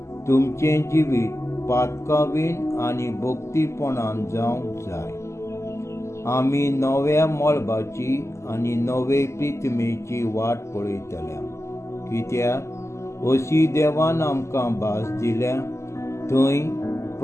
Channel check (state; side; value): late; right; 0.13 ms